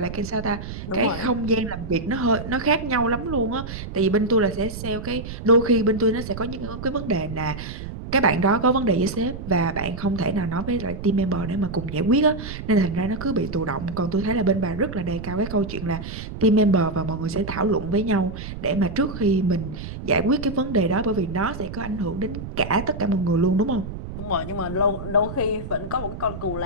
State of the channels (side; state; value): right; noise; rumble, 9 dB below the sound